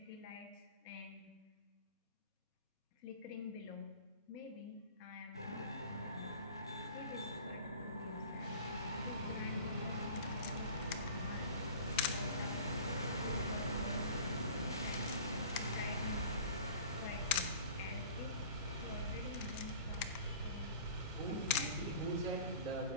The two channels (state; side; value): inverted; both; correlation -0.43